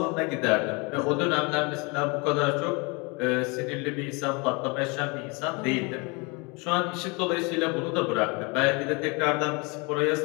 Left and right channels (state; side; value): quieter; right; 29.4 dB